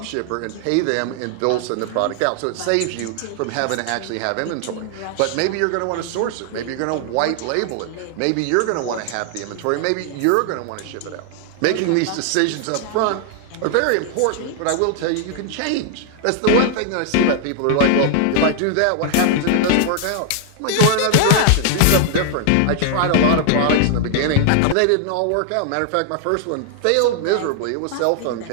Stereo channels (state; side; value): different; both; correlation 0.00